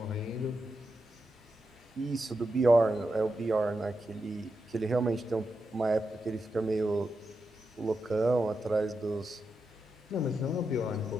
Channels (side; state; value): both; normal; correlation 0.87